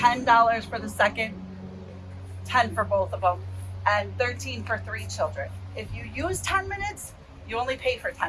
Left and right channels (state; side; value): identical; both; correlation 1.00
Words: for the second, $10 for both of them. and 13 for 3 children. If you use 10 minutes, you only pay for